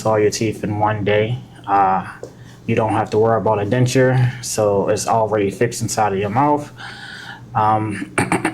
all your teeth in one day. You don't have to worry about a denture, so it's already fixed inside of your mouth.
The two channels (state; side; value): identical; both; correlation 1.00